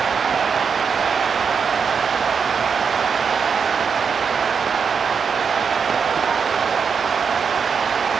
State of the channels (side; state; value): left; quieter; 6.1 dB